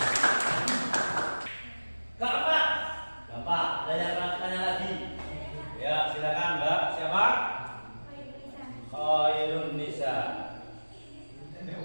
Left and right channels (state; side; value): inverted; both; correlation -1.00